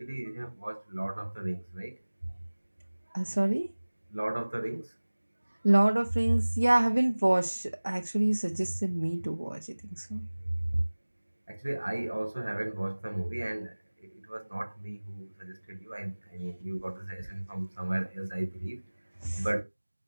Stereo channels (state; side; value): inverted; both; correlation -1.00